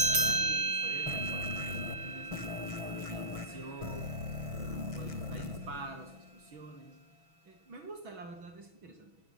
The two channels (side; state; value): left; late; 6.1 ms